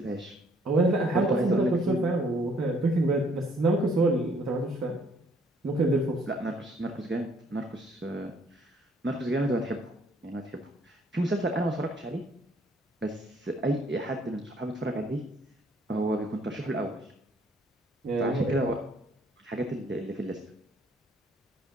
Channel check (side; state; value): both; normal; correlation 0.63